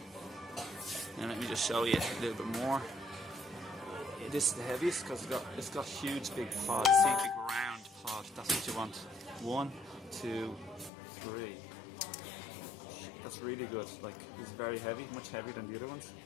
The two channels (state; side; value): drops out; right; at 10.9 s